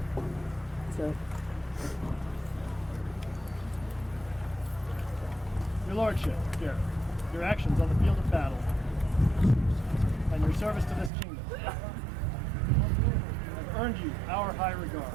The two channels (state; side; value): drops out; left; at 11.1 s